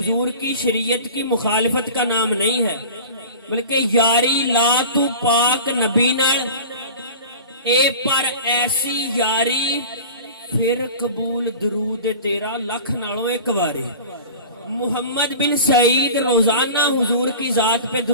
کی شریعت کی مخالفت کا نام نہیں ہے، بلکہ یاری لا تو پاک نبی نال اے پر ایسی یاری پھر قبول درود تیرا لکھ نالوں ایک واری۔ محمد بن سعید روزانہ حضور کی ذات پہ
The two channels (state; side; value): inverted; both; correlation -0.37